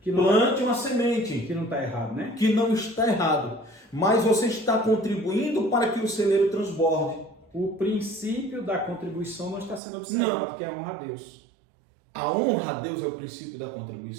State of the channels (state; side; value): drops out; left; at 9.8 s